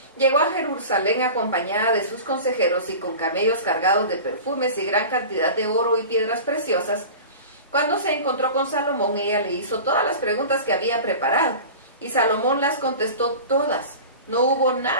Llegó a Jerusalén acompañada de sus consejeros y con camellos cargados de perfumes y gran cantidad de oro y piedras preciosas. Cuando se encontró con Salomón, ella le hizo todas las preguntas que había preparado, y Salomón las contestó todas. No hubo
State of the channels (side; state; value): both; inverted; correlation -0.35